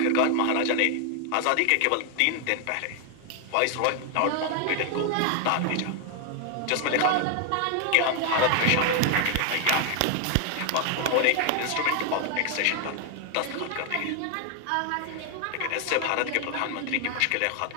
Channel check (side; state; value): both; different; correlation 0.00